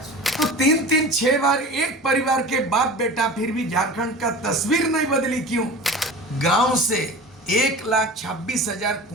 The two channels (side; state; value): both; normal; correlation 0.36